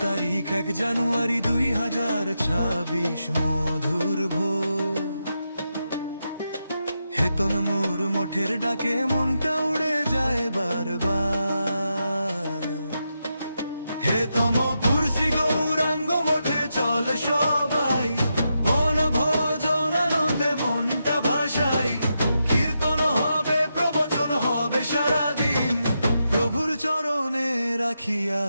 তারিখ 1 জানুয়ারি 2026, মধুর ভোর। হেতনপুর মঠের ডাকে মনটা উড়ে যায় বারবার। হেতমপুর শ্রী গৌরাঙ্গ মঠে চল সবাই, বনভোজন আনন্দে মনটা ভাসাই। কীর্তন হবে, প্রবচন হবে সারাদিন, প্রভুর চরণে রাখি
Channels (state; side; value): inverted; both; correlation -0.85